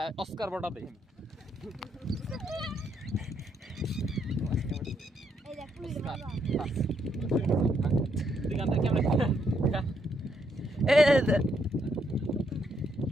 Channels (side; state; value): both; normal; correlation 0.75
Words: অস্কার বটা দেখেন।